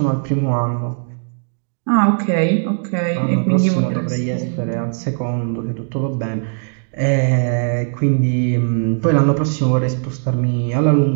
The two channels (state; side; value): silent; left; digital silence